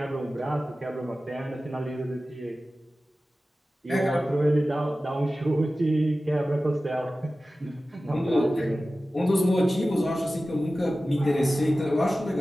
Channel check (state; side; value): normal; both; correlation 0.95